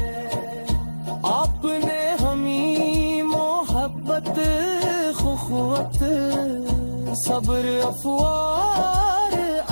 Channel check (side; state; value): both; inverted; correlation -1.00